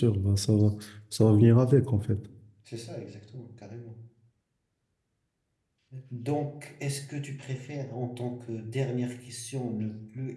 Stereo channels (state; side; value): identical; both; correlation 1.00